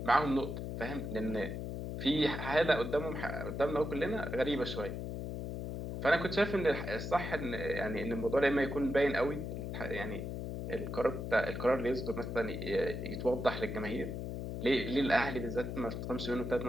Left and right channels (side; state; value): left; noise; hum, 5 dB below the sound